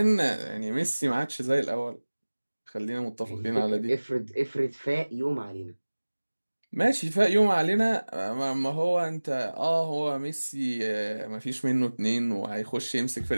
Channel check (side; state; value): both; inverted; correlation -1.00